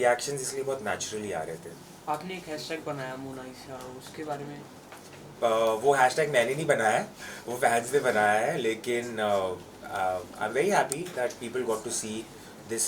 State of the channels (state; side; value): identical; both; correlation 1.00